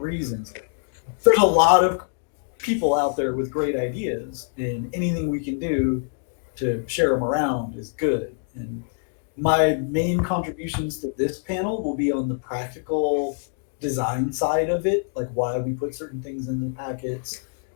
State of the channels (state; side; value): silent; right; digital silence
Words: reasons. There's a lot of people out there with great ideas, and anything we can do to share them around is good. And my main contributions to this panel will be on the practical design side of it, like why we put certain things in the packets,